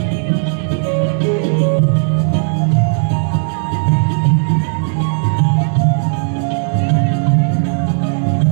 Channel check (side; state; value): left; silent; 65 dB below the other